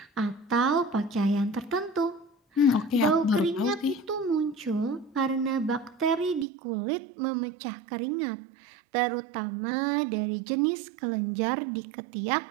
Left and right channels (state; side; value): drops out; left; at 6.5 s